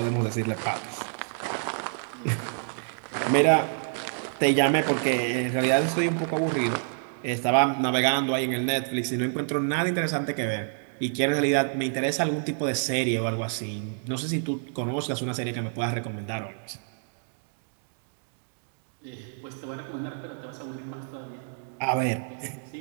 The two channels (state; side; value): silent; left; digital silence